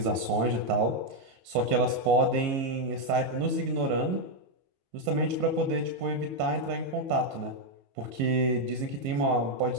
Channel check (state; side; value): late; left; 22 ms